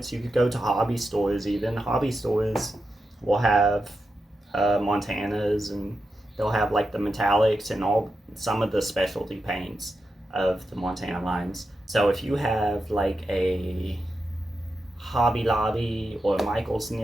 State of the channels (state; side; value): normal; both; correlation 0.88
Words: You could go to hobby stores even. Hobby stores will have Montanas, and they'll have like the metallics and some of the specialty paints of the Montana lines. So if you have like a Hobby Lobby or Michael's